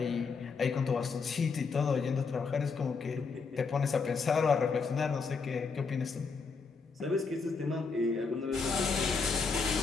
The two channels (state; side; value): quieter; right; 4.9 dB